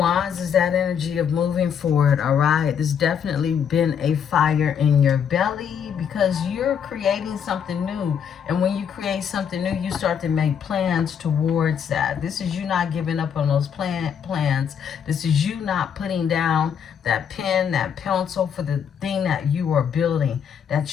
is that energy of moving forward, all right? There's definitely been a fire in your belly because you're creating something new. And when you create something new, you start to make plans towards that. This is you not giving up on those plans. This is you not putting down that pen, that pencil for the thing that you are building,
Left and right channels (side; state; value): right; quieter; 7.8 dB